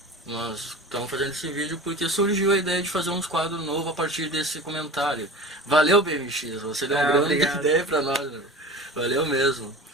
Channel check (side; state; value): both; normal; correlation 0.36